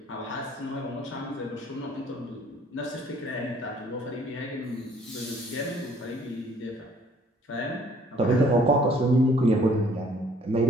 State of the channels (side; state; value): both; normal; correlation 0.59